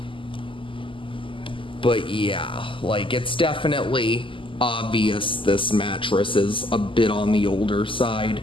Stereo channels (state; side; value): late; right; 0.25 ms